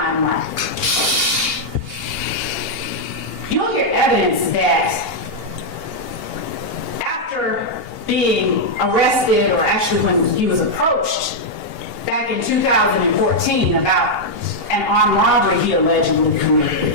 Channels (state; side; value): late; right; 2.8 ms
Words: You'll hear evidence that after being arrested, or actually when he was approached back in 2014 about an armed robbery he allegedly